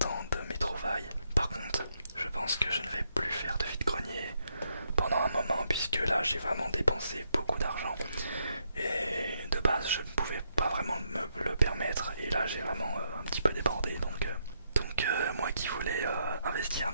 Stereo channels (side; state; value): both; inverted; correlation -0.77